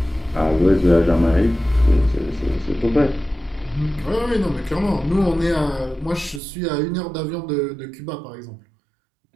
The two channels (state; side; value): drops out; left; at 6.4 s